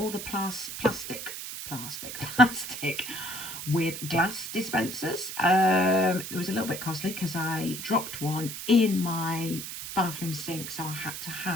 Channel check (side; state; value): right; noise; hiss, 8 dB below the sound